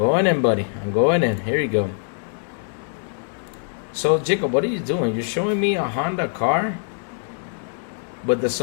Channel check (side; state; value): right; silent; digital silence